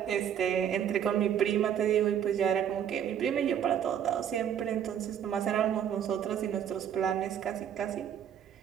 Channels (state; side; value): quieter; left; 9.2 dB